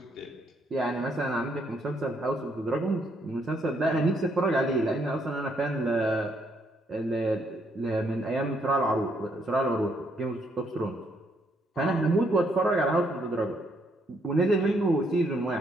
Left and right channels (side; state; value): both; normal; correlation 0.72